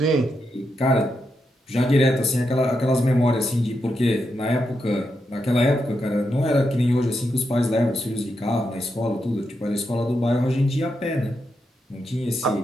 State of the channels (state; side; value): normal; both; correlation 0.84